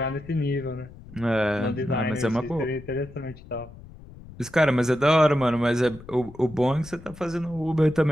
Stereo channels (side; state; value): left; noise; rumble, 18 dB below the sound